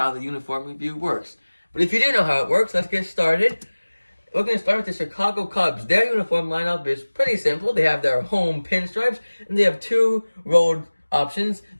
the uniform review works. But if you do know how it works, let's get started. We're going to start with the Chicago Cubs. Their uniform lineup is pretty simple. They have their home pinstripes, and they have 2 road options,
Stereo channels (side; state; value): both; inverted; correlation -1.00